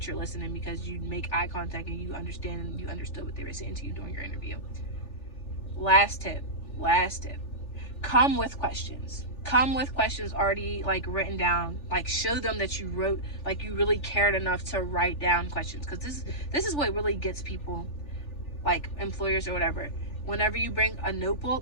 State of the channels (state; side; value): late; right; 3.4 ms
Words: you're listening because you make eye contact and you understand and you understood what they were saying to you during your interview. Last tip. Come with questions. Come with questions already like written down. Like, show them that you wrote, like you really cared enough to write down questions, because this is what really gets people, like employers or whatever. Whenever you bring a